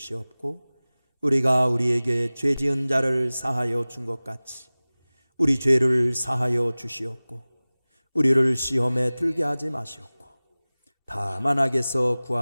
우리가 우리에게 죄 지은 자를 사하여 준 것 같이 우리 죄를 사하여 주시옵고 우리를 시험에 들게 하지 마시옵고 다만 악에서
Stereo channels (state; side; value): inverted; both; correlation -0.99